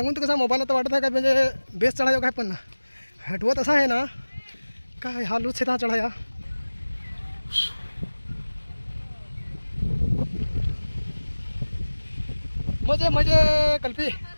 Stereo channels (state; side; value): inverted; both; correlation -1.00